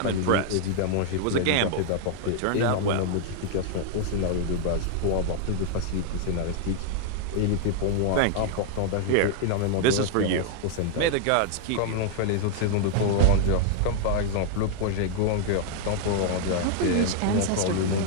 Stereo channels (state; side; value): different; both; correlation 0.00